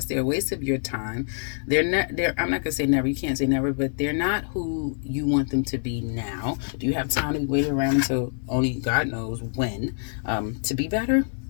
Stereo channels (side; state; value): right; silent; digital silence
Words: They're a waste of your time. I'm not going to say never. You can't say never, but they're not who you want them to be now. Do you have time to be waiting around until only God knows when to be better?